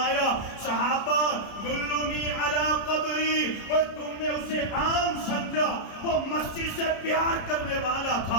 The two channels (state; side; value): late; right; 30 ms